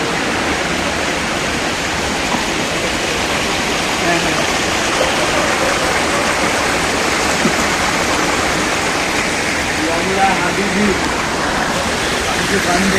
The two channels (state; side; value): identical; both; correlation 1.00